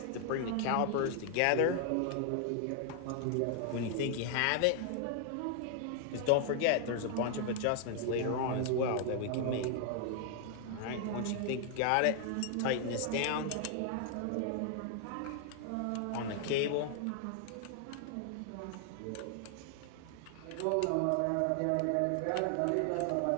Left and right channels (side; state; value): both; different; correlation 0.00